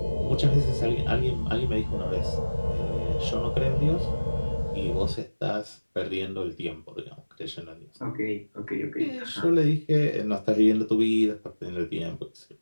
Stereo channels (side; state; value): both; inverted; correlation -1.00